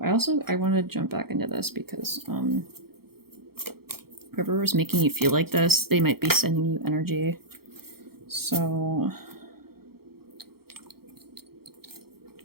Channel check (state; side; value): late; left; 0.95 ms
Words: I want to jump back into this because whoever was making you feel like this, they might be sending you energy. So